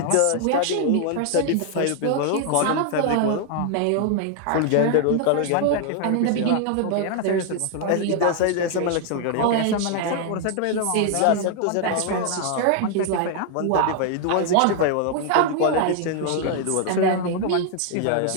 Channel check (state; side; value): different; both; correlation 0.00